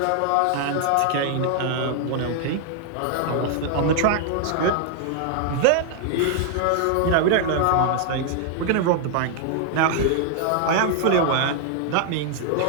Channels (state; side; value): different; both; correlation 0.00